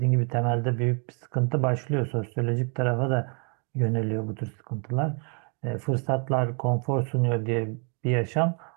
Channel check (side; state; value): left; quieter; 38.1 dB